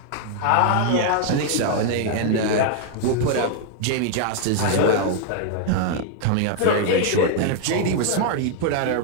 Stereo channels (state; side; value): different; both; correlation 0.00